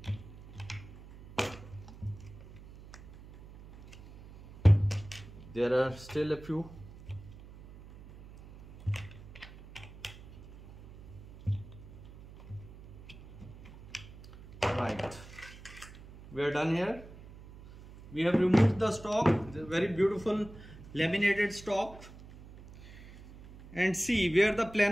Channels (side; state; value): right; noise; hum, 18 dB below the sound